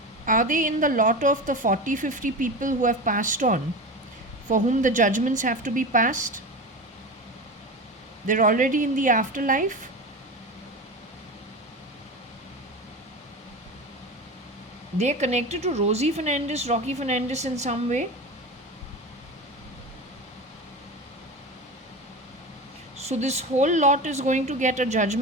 Are they in the lot of the 40-50 people who have passed on, for whom the judgments have to be passed? They're already in the afterlife. They're connected to Rosie Fernandez, Rocky Fernandez in some way. So this whole lot is going to get a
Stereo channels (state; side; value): normal; both; correlation 0.26